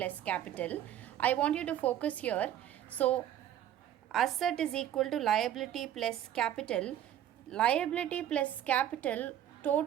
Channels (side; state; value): left; quieter; 11.2 dB